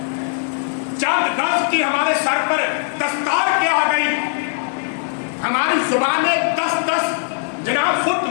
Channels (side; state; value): right; silent; digital silence